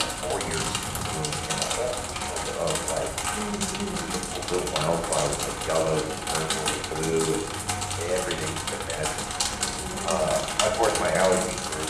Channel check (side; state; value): both; identical; correlation 1.00